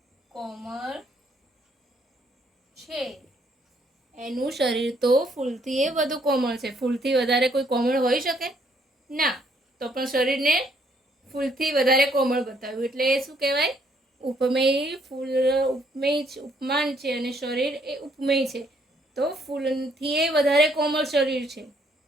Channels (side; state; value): both; normal; correlation 0.68